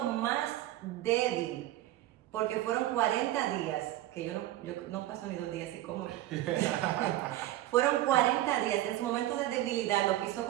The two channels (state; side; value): quieter; left; 14.6 dB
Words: más débil, porque fueron 40 días, que yo no paso ni 2 días y como. Fueron 40 días, en su momento de debilidad lo quiso